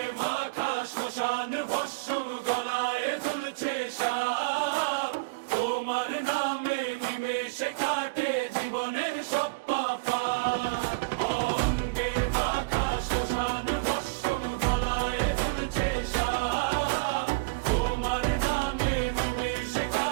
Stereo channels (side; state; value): left; quieter; 29.1 dB